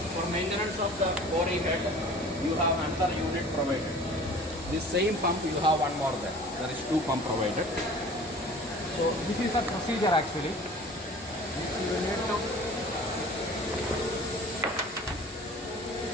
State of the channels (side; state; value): both; normal; correlation 0.44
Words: For maintenance of the boring head, you have another unit provided. This same pump you have one more there. There is two pump provided. So this is the procedure actually. You need to